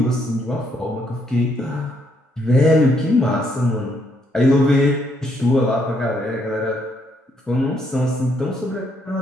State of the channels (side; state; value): both; normal; correlation 0.73